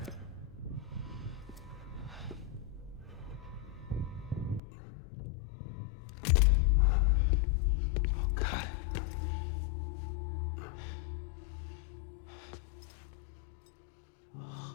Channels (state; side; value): drops out; right; at 4.6 s